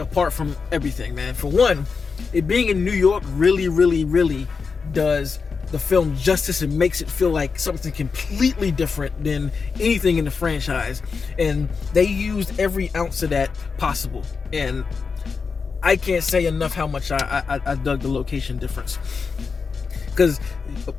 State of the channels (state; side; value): quieter; right; 5.1 dB